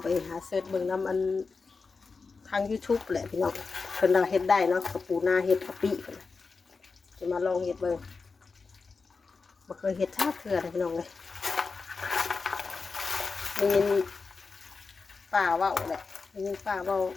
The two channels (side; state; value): right; quieter; 4.5 dB